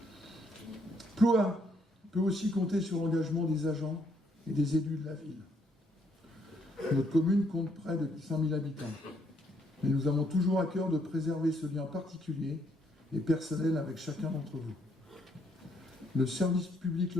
Ploua peut aussi compter sur l'engagement des agents et des élus de la ville. Notre commune compte près de 5 000 habitants, mais nous avons toujours à cœur de préserver ce lien particulier et personnel avec chacun d'entre vous. Le service public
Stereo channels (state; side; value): normal; both; correlation 0.70